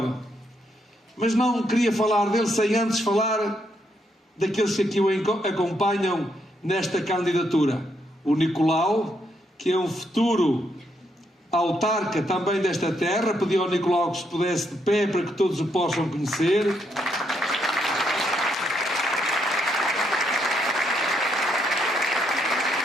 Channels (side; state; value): both; normal; correlation 0.76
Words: Mas não queria falar dele sem antes falar daqueles que aqui o acompanham nesta candidatura. O Nicolau, que é um futuro autarca também desta terra. Pedi ao Nicolau que se pudesse de pé para que todos o possam conhecer.